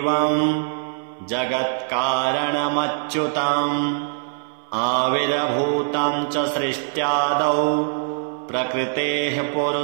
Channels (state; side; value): silent; left; 60 dB below the other